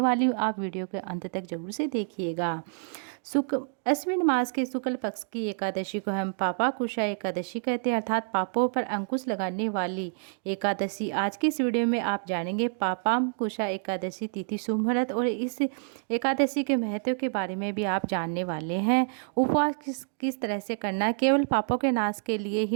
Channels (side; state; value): left; silent; 59 dB below the other